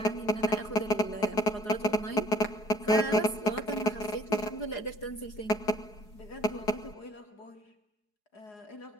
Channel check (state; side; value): late; right; 4.8 ms